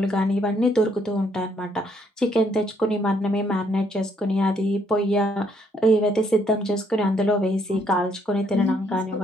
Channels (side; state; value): both; normal; correlation 0.70